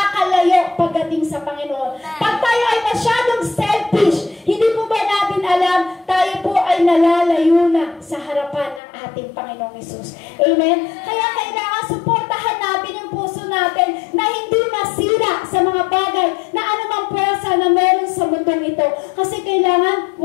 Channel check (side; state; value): right; drops out; at 8.8 s